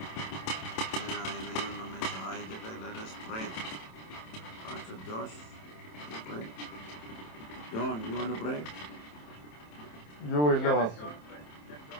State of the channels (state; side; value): late; right; 27 ms